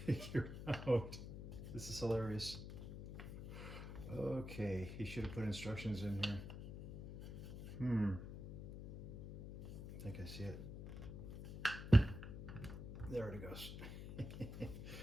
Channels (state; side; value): noise; left; hum, 8 dB below the sound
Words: figure out. This is hilarious. Okay, he should have put instructions in here. I think I see it. There it goes.